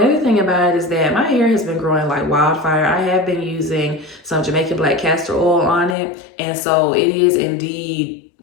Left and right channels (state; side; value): drops out; right; at 6.0 s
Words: thing about it is that my hair has been growing like wildfire. I have been using some Jamaican black castor oil on it, and so it is indeed